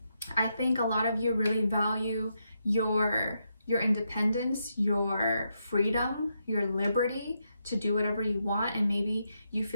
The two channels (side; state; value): both; inverted; correlation -0.82